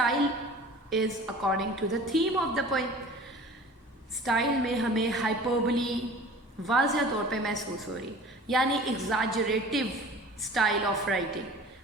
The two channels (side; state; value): both; normal; correlation 0.43